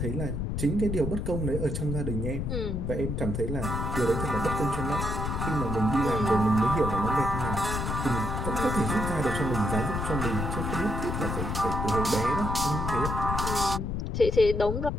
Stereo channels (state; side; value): noise; left; rumble, 2 dB below the sound